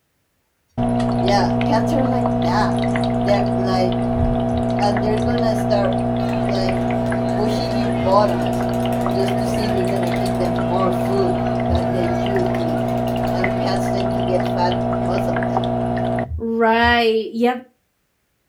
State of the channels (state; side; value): identical; both; correlation 1.00